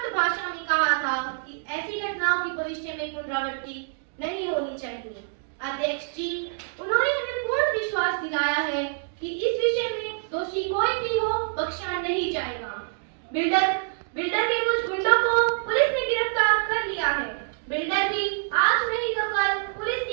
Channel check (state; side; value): silent; left; digital silence